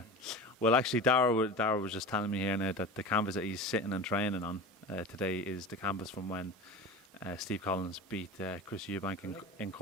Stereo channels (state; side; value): normal; both; correlation 0.32